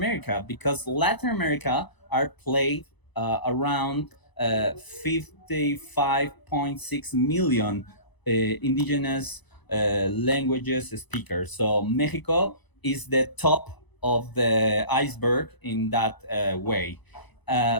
because Latin America are played around 55.6 million indigenous languages speakers. So Mexico is the top of the iceberg in that way.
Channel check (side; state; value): right; late; 1.0 ms